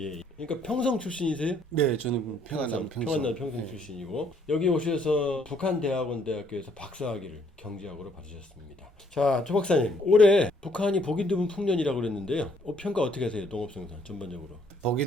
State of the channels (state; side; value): normal; both; correlation 0.66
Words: 그러니까 평성 출신이세요? 네, 저는 평안남 평성 출신이고, 여기 오셔서 북한대학원대학교에서 박사학위를 경제학으로 받으셨습니다. 자, 조 박사님, 올해 북한이 보기 드문 풍년이라고 그랬는데요. 평가 어떻게 하세요? 농업생산 전반적으로. 보기